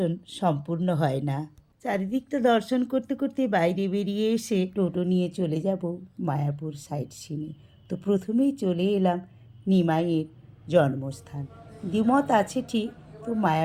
সম্পূর্ণ হয় না। চারিদিকটা দর্শন করতে করতে বাইরে বেরিয়ে এসে টোটো নিয়ে চলে যাব মায়াপুর সাইট সিনে। তো প্রথমেই চলে এলাম নিমাইয়ের জন্মস্থান। দ্বিমত আছে ঠিক, তো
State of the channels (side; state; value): both; identical; correlation 1.00